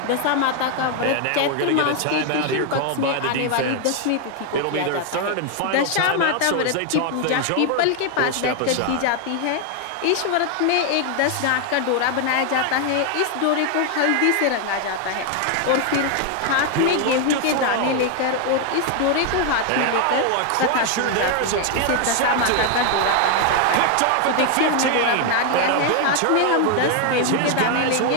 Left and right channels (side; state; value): both; different; correlation 0.01